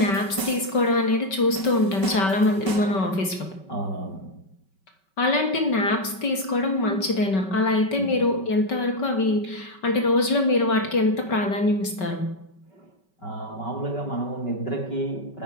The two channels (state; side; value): late; right; 5.2 ms